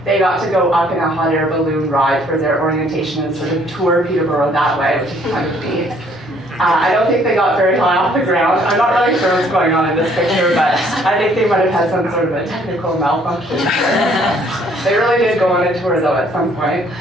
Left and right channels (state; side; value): normal; both; correlation 0.62